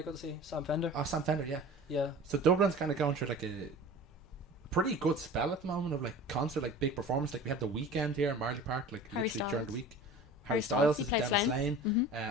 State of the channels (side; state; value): both; normal; correlation 0.39